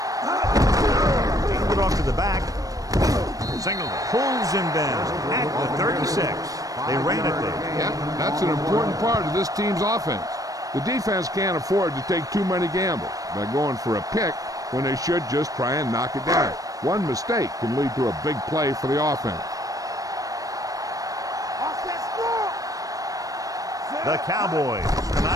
it off to the back. Singleton pulls him down at the 36. They ran it there. Yeah, that's an important part of this team's offense. The defense can't afford to take too many gambles by going for a pick when they should just try and knock it down. One mistake can lead to a big play for the offense. The Cowboys come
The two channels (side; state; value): left; late; 0.17 ms